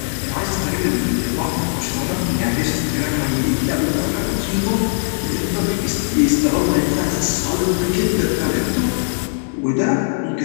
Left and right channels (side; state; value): right; silent; 66 dB below the other